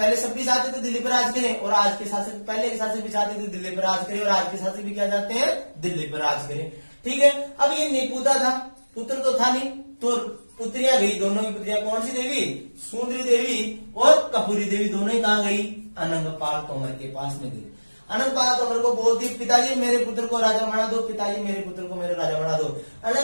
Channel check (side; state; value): both; inverted; correlation -1.00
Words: सब भी चाहते थे दिल्ली पर राज करें, और आज के शासक, पहले के शासक भी चाहते थे दिल्ली पर राज करें, और आज के शासक भी क्या चाहते हैं, दिल्ली पर राज करें। ठीक है। अब ये नेपुता था, पुत्र तो था नहीं, तो पुत्रियां गई, दोनों की पुत्रियां कौन सी देवी, सुंदरी देवी और कपूरी देवी, दोनों ही कहां गई, अनंगपाल तोमर के पास में गई। अनंगपाल तोमर को बोलती, पिताजी मेरे पुत्र को राजा बना दो, पिताजी मेरे पुत्र को मेरे राजा बना दो।